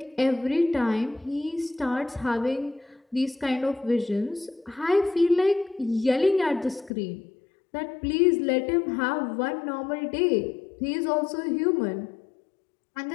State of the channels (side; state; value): right; drops out; at 6.9 s